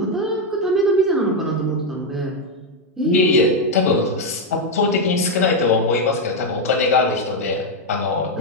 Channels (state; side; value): normal; both; correlation 0.03